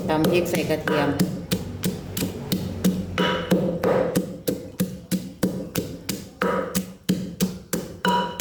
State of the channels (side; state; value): both; identical; correlation 1.00